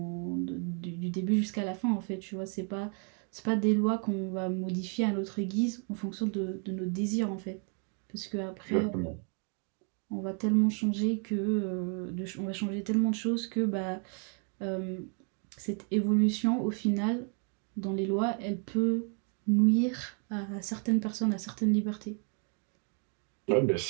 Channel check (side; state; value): left; quieter; 39.8 dB